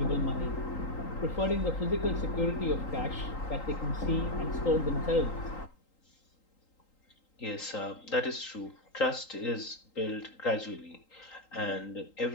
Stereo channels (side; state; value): right; late; 3.8 ms